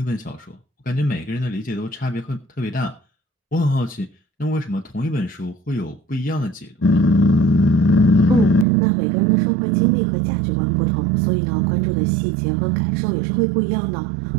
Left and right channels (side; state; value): left; drops out; at 8.7 s